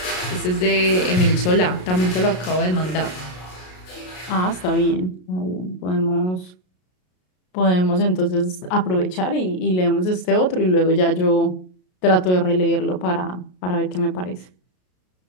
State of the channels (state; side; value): late; right; 33 ms